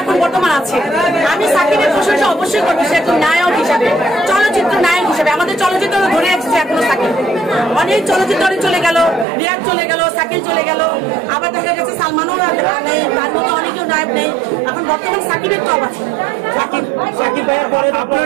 বর্তমান আছে। আমি সাকিবের প্রশংসা অবশ্যই করবো, সে একজন নায়ক হিসাবে, চলচ্চিত্র নায়ক হিসাবে। আমাদের চলচ্চিত্র ধরে আসছে এখনো সাকিব, অনেক চলচ্চিত্র চলে গেল, রিয়াজ চলে গেল, সাকিব চলে গেল, আবার দেখা গেছে সালমানও নেই, তার মতো অনেকেও নায়ক নেই। এখন বর্তমান সাকিবের টপ আছে।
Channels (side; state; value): left; drops out; at 9.2 s